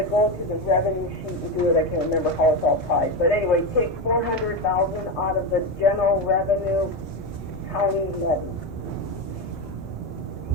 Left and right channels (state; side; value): normal; both; correlation 0.14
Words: go to the revenue sheet and do it. I can't remember how it's all tied, but anyway, take 400,000 out of the general revenue county levy.